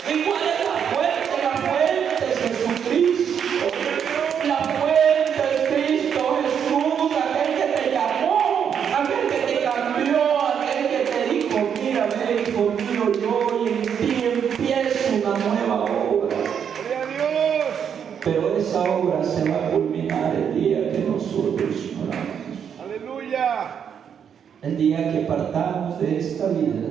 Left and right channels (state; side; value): quieter; left; 7.9 dB